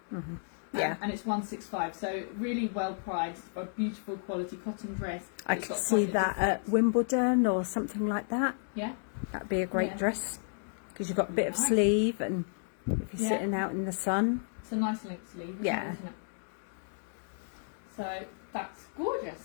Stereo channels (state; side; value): silent; right; digital silence